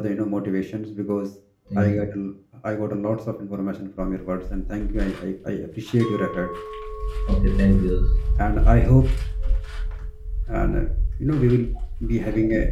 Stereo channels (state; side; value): identical; both; correlation 1.00